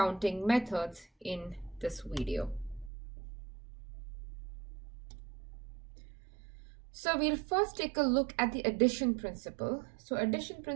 methods in this video. So we'll first take a look at the addition principle. So addition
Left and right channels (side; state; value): left; drops out; at 2.9 s